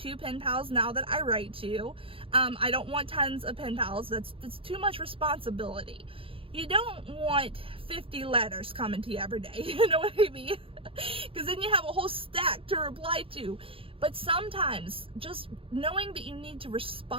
pen pals now that I write to. I don't want tons of pen pals. That's too much responsibility. You don't want 50 letters coming to you every day, you know what I mean? Because then you have a whole stack to reply to. But sometimes just knowing that you need to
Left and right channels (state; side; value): late; left; 0.26 ms